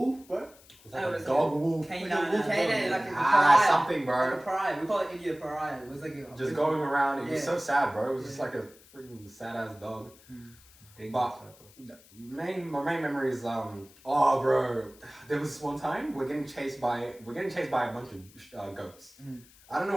bro? It was like Oh, a it's dog wolf. Canine, like a Ah, pariah. something, Like bro. a pariah. We call it India pariah. It was like a... Just going around. It was Yeah. so sad, bro. It was just like a freaking sad ass dog. But my main memory is oh bro, there was this one time we're getting chased by a bunch of goats. I don't know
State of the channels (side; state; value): left; noise; hiss, 25 dB below the sound